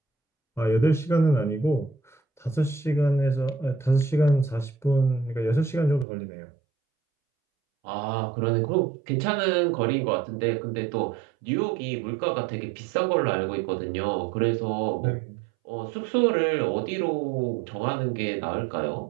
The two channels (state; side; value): drops out; left; at 6.1 s